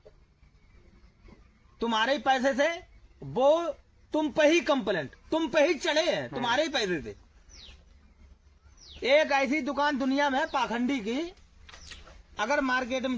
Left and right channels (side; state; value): both; identical; correlation 1.00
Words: तुम्हारे ही पैसे से वो तुम पे ही कंप्लेंट, तुम पे ही चढ़े हैं, तुम्हारे ही पैसे से। एक ऐसी दुकान दुनिया में पाखंडी की, अगर मार्केट में